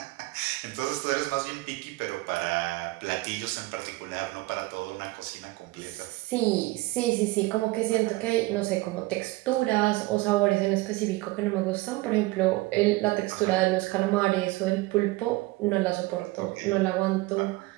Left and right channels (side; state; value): left; quieter; 21.1 dB